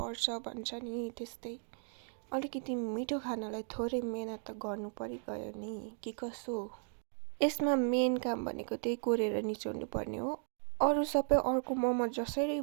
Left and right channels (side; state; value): left; silent; digital silence